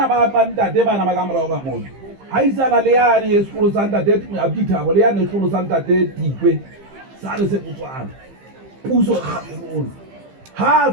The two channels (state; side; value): late; left; 15 ms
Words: ba ntate bana ba ka morao ka mona ha isana le yane sekolo sa ntate Abdithabo le yane sekolo sa ntate Tikwe sa re se Botswana puso Cameroon ha